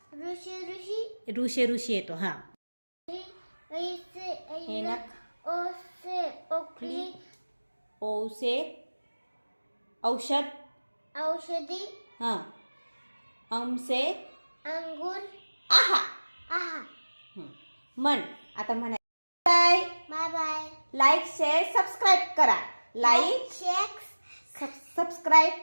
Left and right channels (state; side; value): inverted; both; correlation -1.00